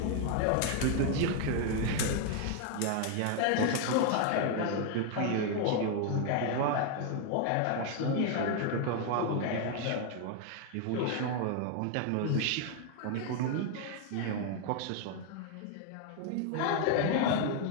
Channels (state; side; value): different; both; correlation 0.00